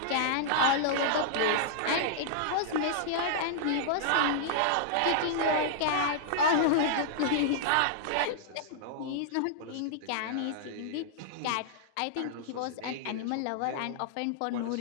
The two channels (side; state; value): both; different; correlation -0.02